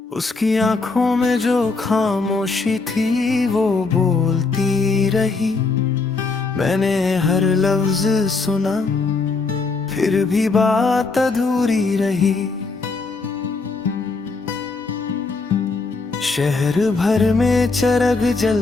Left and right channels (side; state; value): right; quieter; 4.0 dB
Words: उसकी आंखों में जो खामोशी थी वो बोलती रही। मैंने हर लफ्ज सुना, फिर भी बात अधूरी रही। शहर भर में चरग